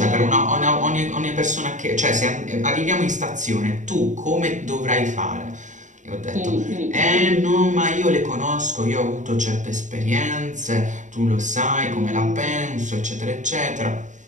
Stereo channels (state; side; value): late; left; 0.36 ms